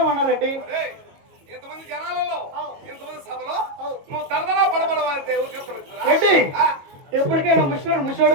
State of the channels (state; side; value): late; left; 22 ms